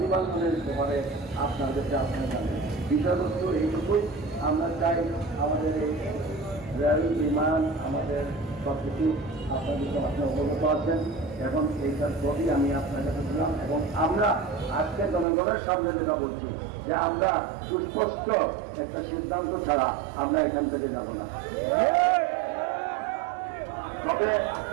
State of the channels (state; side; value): drops out; left; at 15.2 s